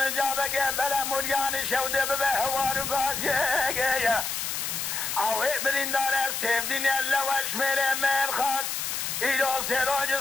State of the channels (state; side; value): noise; left; hiss, 2 dB below the sound